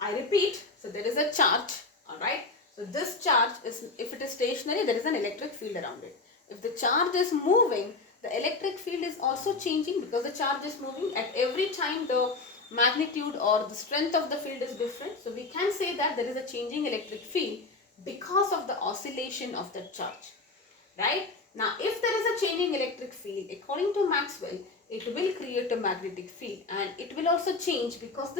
repeat, so there is a charge, alright. So this charge is, if it is stationary, there is an electric field around it. If the charge is moving, the electric field is also changing because the charge is moving. At every time the magnitude or the strength of the field is different. So we can say that there is a changing electric field because of the oscillation of the charge. Right? Now, if there is a changing electric field, according to Maxwell, it will create a magnetic field, and it will also change because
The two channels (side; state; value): right; quieter; 3.7 dB